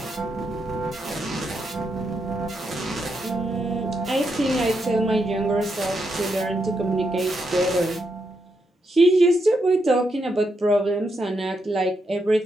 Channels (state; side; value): normal; both; correlation 0.82